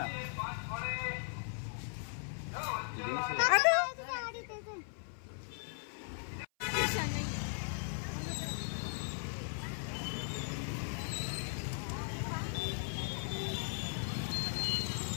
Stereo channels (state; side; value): silent; right; 52 dB below the other